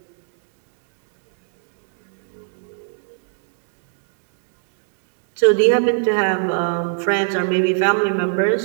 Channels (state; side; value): silent; left; digital silence